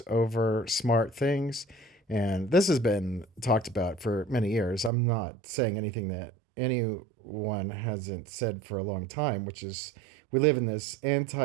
over smart things. And this has been talked about for many years. I'm not saying anything that anyone hasn't said for a long time, which is we live in this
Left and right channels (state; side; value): drops out; left; at 4.9 s